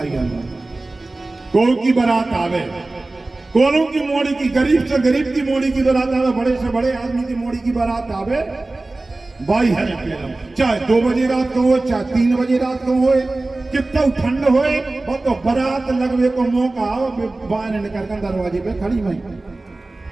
आना। कोई की बारात आवे, कोनों की मोड़ी की, गरीब से गरीब की मोड़ी की बारात आवे, बड़े से बड़े आदमी की मोड़ी की बारात आवे, भाई है चाहे 2 बजे रात को हो, चाहे 3 बजे रात को हो, कितना ठंड होए, वो तो बारात लगवे को मौका आओ, बाहर निकल कर दरवाजे पे खड़ी भाई।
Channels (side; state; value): left; quieter; 3.0 dB